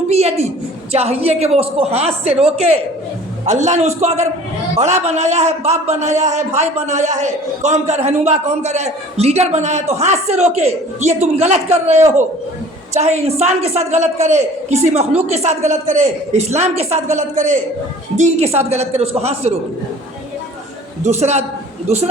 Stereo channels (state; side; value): normal; both; correlation 0.48